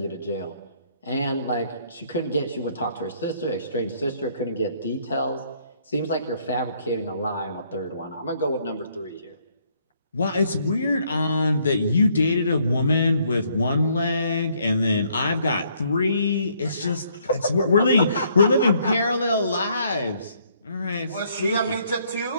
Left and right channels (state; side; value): inverted; both; correlation -0.67